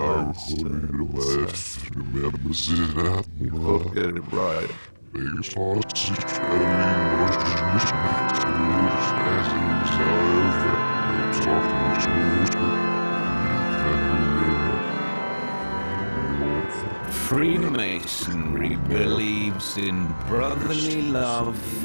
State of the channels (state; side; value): inverted; both; correlation -1.00